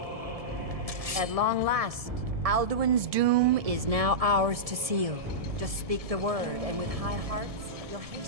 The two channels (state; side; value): late; left; 1.7 ms